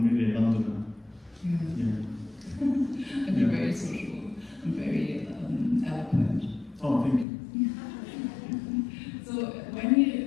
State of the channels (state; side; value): drops out; right; at 7.2 s